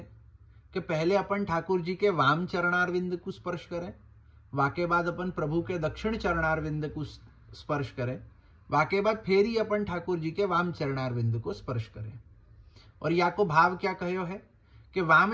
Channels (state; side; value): identical; both; correlation 1.00